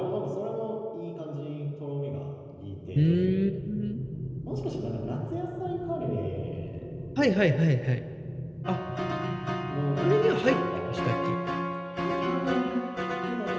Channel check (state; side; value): identical; both; correlation 1.00